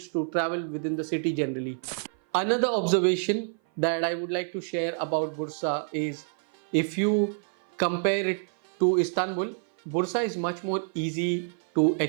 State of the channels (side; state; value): left; silent; 56 dB below the other